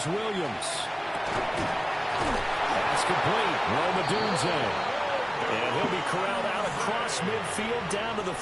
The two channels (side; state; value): both; identical; correlation 1.00